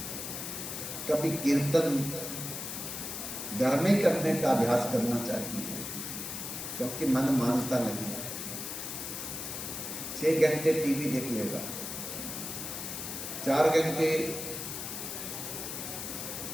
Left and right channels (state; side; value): noise; left; hiss, 6 dB below the sound